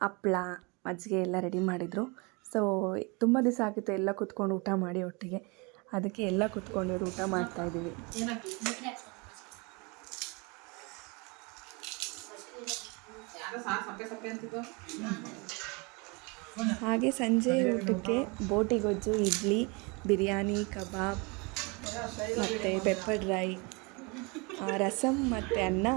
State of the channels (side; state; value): left; quieter; 29.3 dB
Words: ಹಪ್ಳ, ಮಜ್ಜಿಗೆ ಎಲ್ಲ ರೆಡಿ ಮಾಡಿದರು. ಸೊ ತುಂಬ ದಿವಸ ಆಗಿತ್ತು ಎಲ್ಲ ಕೂತ್ಕೊಂಡು ಊಟ ಮಾಡಿ ಒಟ್ಟಿಗೆ. ಅದಕ್ಕೆ ಎಲ್ಲ ಕೂತ್ಕೊಂಡು ಊಟ ಮಾಡ್ತಾಯಿದ್ದೀವಿ. ಹಾಗೆ ಸಂಜೆ ಊಟಕ್ಕೆ ಬೋಟಿ ಗೊಜ್ಜು, ಇಡ್ಲಿ, ಬಿರಿಯಾನಿ, ಕಬಾಬ್ ಮತ್ತು ಪೆಪ್ಪರ್ ಡ್ರೈ, ರಸಮ್ ಮತ್ತು ಅನ್ನ